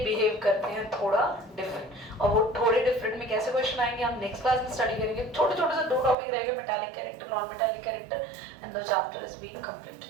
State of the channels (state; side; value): drops out; left; at 6.2 s